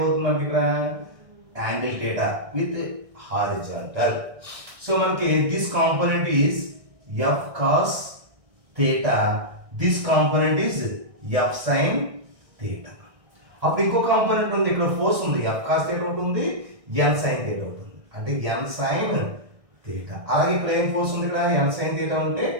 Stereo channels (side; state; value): left; late; 1.6 ms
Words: మనకి ఇక్కడ angle theta with horizontal. So మనకి this component is f cos theta, this component is f sin theta. అప్పుడు ఇంకో కాంపోనెంట్ ఉంది, ఇక్కడ ఫోర్స్ ఉంది, f cos theta ఉంటుంది, n sin theta ఉంటుంది, అంటే n sin theta. అలాగే ఇక్కడ ఏం ఫోర్స్ ఉంది, ఇక్కడ n sin theta ఉంటే